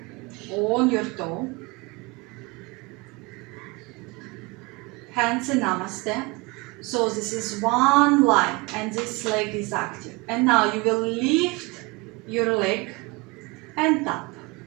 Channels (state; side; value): quieter; left; 25.9 dB